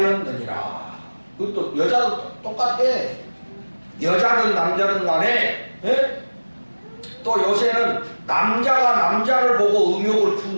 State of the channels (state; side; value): inverted; both; correlation -1.00